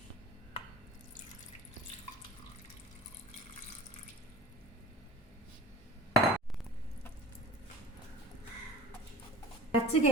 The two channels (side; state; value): both; normal; correlation 0.43